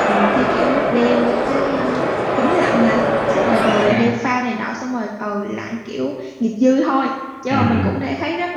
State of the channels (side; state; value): both; identical; correlation 1.00